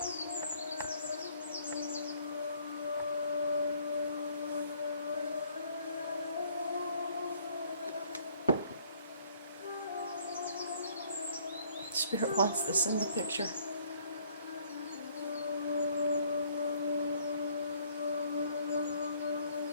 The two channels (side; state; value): both; inverted; correlation -0.62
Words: Spirit wants this in the picture.